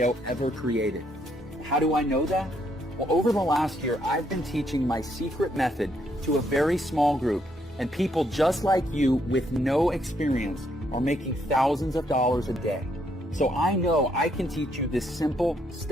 ever created. How do I know that? Well, over the last year, I've been teaching my secret method to a very small group. And people just like you with no experience are making thousands of dollars a day. So I know I can teach you this simple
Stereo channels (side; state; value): both; normal; correlation 0.73